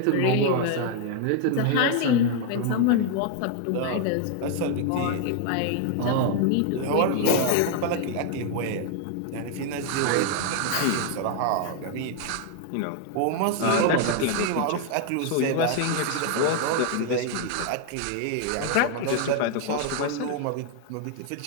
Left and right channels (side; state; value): both; different; correlation 0.00